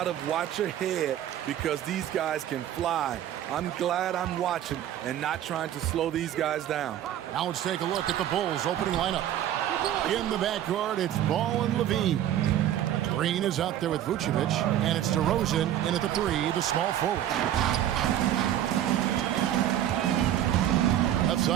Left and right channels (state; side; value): quieter; left; 11.6 dB